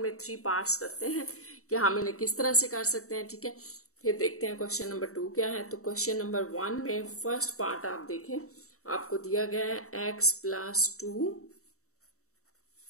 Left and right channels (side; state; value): right; late; 0.64 ms